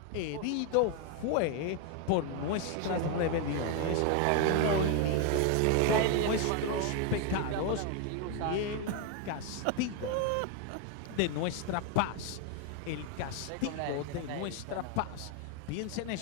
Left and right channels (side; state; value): both; different; correlation 0.01